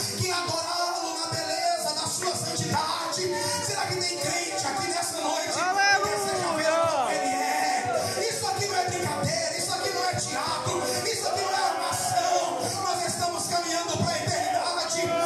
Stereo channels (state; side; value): identical; both; correlation 1.00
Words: que é adorá-lo na beleza da sua santidade. Será que tem crente aqui nessa noite que deseja ver como Ele é? Isso aqui não é brincadeira, isso aqui não é teatro, isso aqui não é armação. Nós estamos caminhando para a eternidade.